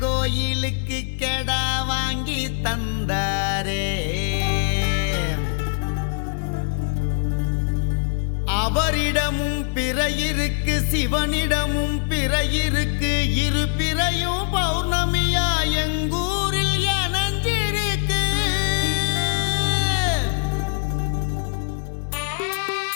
கோயிலுக்கு கெடா வாங்கி தந்தாரே. அவரிடமும் பிறையிருக்கு, சிவனிடமும் பிறையிருக்கு. இரு பிறையும் பௌர்ணமியா எங்கூரில் இணைஞ்சிருக்கு.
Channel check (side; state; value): right; silent; digital silence